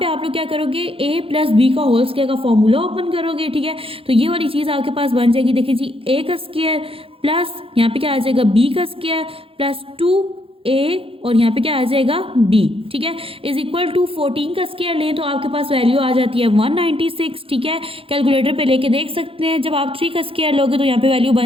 पे आप लोग क्या करोगे, a प्लस b का होल स्क्वायर का फॉर्मूला ओपन करोगे। ठीक है, तो ये वाली चीज़ आपके पास बन जाएगी, देखिए जी a का स्क्वायर प्लस यहाँ पे क्या आ जाएगा b का स्क्वायर प्लस 2a और यहाँ पे क्या आ जाएगा b। ठीक है, इज इक्वल टू 14 का स्क्वायर लें तो आपके पास वैल्यू आ जाती है 196। ठीक है, कैलकुलेटर पे लेके देख सकते हैं। जब आप 3 का स्क्वायर लोगे तो यहाँ पे वैल्यू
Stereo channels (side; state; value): left; late; 0.27 ms